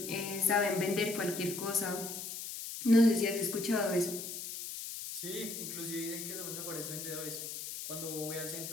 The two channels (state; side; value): noise; left; hiss, 7 dB below the sound